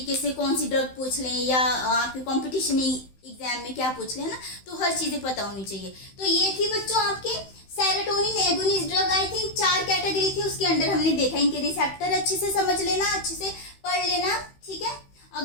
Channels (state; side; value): late; right; 16 ms